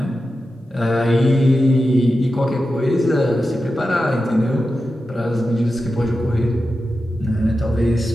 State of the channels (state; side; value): normal; both; correlation 0.91